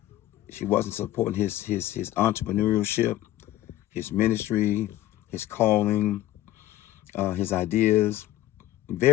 supporting his entrepreneurship, his ministry, his calling, his ideas.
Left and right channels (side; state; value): right; quieter; 14.4 dB